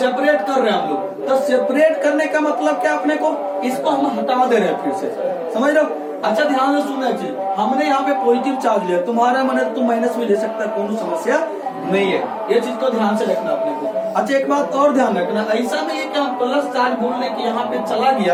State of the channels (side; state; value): both; identical; correlation 1.00